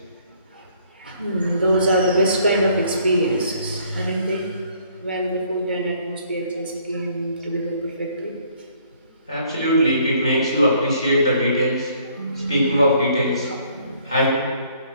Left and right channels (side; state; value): both; inverted; correlation -0.62